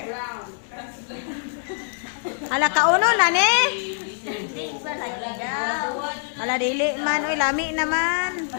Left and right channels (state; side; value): silent; right; digital silence